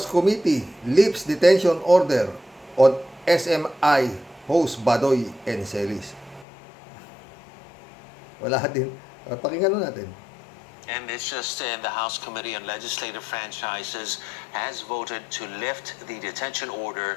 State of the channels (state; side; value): drops out; right; at 6.5 s